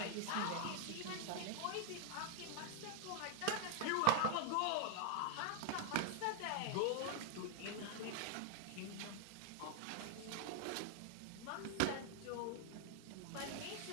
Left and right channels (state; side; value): different; both; correlation 0.00